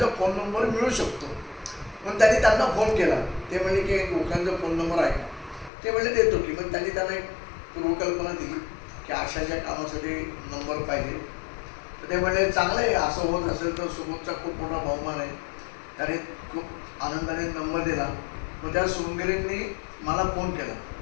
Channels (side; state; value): right; drops out; at 5.7 s